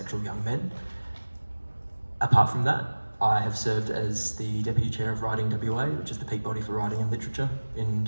young men. Apart from that, I have served as the Deputy Chair of Writing WA, which is the peak body for writing and literature in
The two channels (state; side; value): inverted; both; correlation -1.00